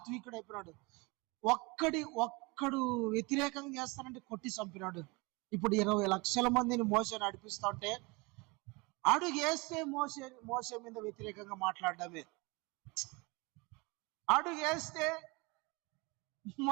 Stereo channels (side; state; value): left; quieter; 26.3 dB